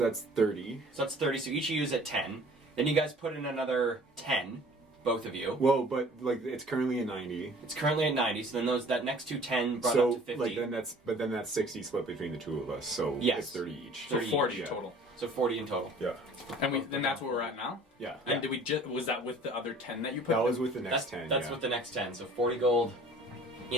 that's 30. So that's 30, so each of you is at 10. Then you guys put in another 10, both of you. Well, but like it's currently at 90. It's currently at 90, so then that next two 10 brought So up to 50. like then that's 60 split between the two of us. So Yes. it's 30 each. So 30 40 yeah. total. So 40 in total. Yeah. And then that's where we're at now. Yeah. And did we was that with the other 10 that you put? That was with the That's next 10. That's yeah. with the next 10. So 40 gold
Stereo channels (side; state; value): both; normal; correlation 0.50